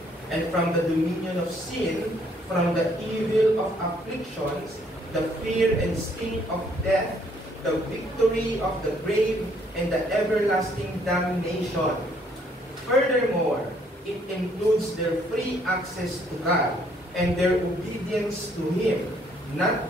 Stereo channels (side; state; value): both; normal; correlation 0.66